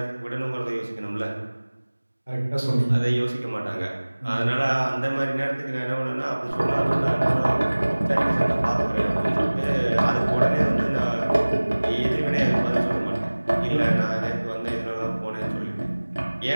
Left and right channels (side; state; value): both; inverted; correlation -1.00